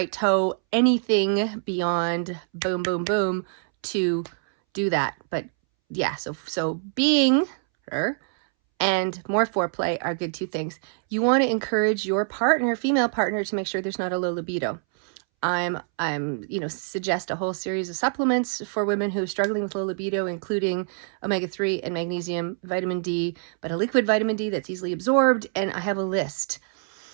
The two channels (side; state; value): left; silent; 62 dB below the other